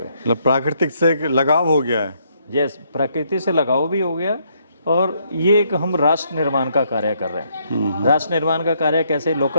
मतलब प्राकृतिक से एक लगाव हो गया है। यस, प्रकृति से लगाव भी हो गया और ये एक हम राष्ट्र निर्माण का कार्य कर रहे हैं। राष्ट्र निर्माण का कार्य कैसे?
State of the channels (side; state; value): both; inverted; correlation -0.72